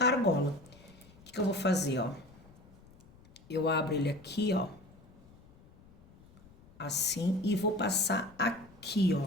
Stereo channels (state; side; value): noise; left; rumble, 25 dB below the sound